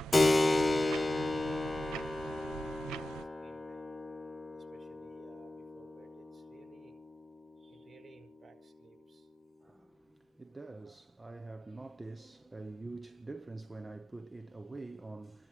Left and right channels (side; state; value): both; normal; correlation 0.94